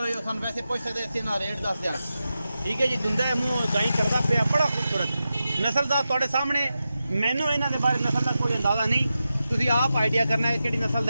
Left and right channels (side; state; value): both; inverted; correlation -0.91